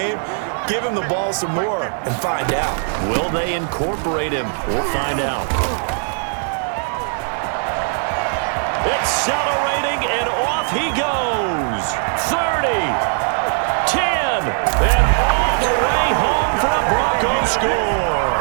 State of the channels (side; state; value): left; silent; 59 dB below the other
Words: Give him the ball some more and find out. Will they incorporate him? We'll find out. Accelerating, and off he goes. 30, 10, and all the way home for the Broncos score.